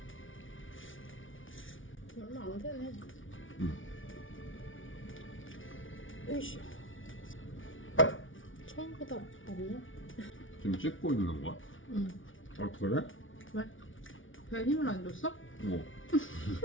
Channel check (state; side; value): late; right; 0.57 ms